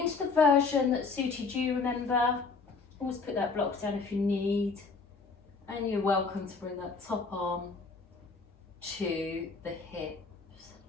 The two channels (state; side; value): quieter; right; 4.4 dB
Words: the version that suited you. Remember, always put that block down if you need, and you're welcome to bring that top arm to the hips.